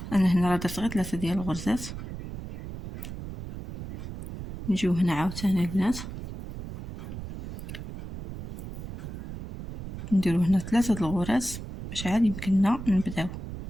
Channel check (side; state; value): right; noise; rumble, 10 dB below the sound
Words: انا هنا راه درت غير 3 ديال الغرزات. نجيو هنا عاوتاني البنات نديرو هنا 3 د الغرز باش عاد يمكننا نبداو.